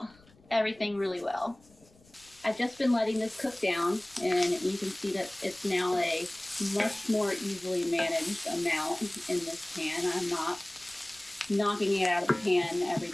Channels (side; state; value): left; noise; rumble, 28 dB below the sound